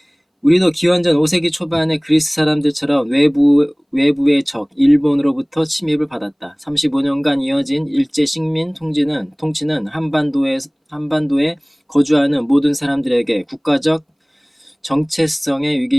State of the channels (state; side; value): identical; both; correlation 1.00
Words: 우리도 기원전 5세기 초반의 그리스 사람들처럼 외부의 적 일본으로부터 침입을 받았다. 35년간 이어진 일제 식민 통치는 한반도에 거주하는 모든 사람들에게 국가적 정체성의